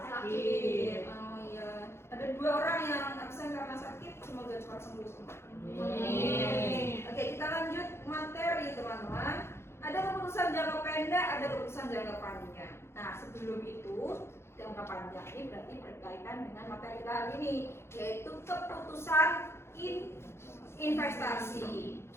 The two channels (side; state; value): right; late; 0.12 ms